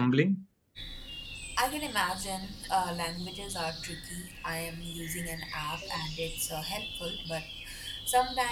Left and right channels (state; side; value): identical; both; correlation 1.00